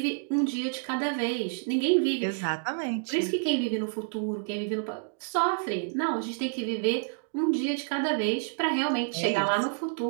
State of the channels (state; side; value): silent; left; digital silence